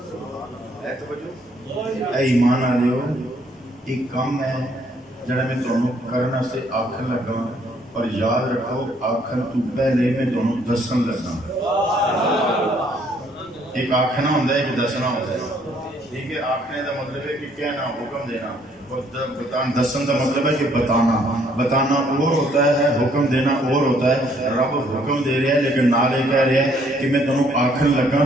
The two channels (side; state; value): both; normal; correlation 0.65